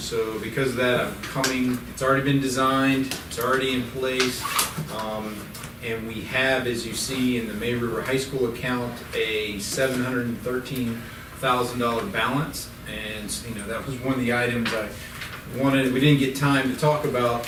because of that, it's already been designed, it's already in place. And we have, as you see in the May River High School account, a $713,000 balance. And, that was one of the items I wanted, we didn't get time to talk about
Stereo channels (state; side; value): identical; both; correlation 1.00